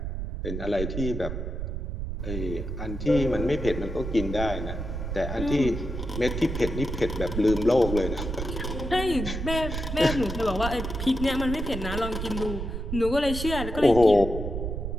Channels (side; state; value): right; noise; rumble, 5 dB below the sound